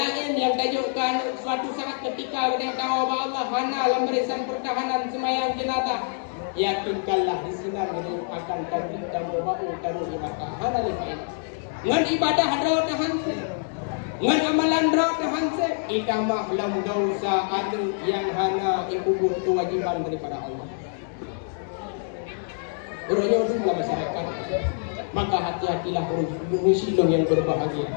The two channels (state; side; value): silent; right; digital silence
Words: yang tajukkan suatu saat ketika kita tahu bahwa Allah hana dalam barisan pertahanan semayang jenazah. Yakinkanlah di sini kita akan tampil dan berbau taruh ibadah hana lifain. Ngan ibadah rawat hanse, ngan amalan rawat hanse. Ikamah lam dosa adu yang hana ikubur kewajiban daripada Allah. Urangnya dulu masyarakat. Maka hati-hatilah urusilong yang